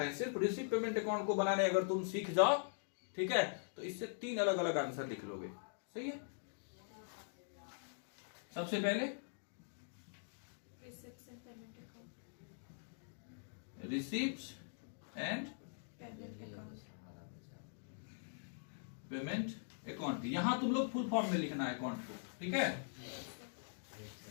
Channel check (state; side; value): silent; right; digital silence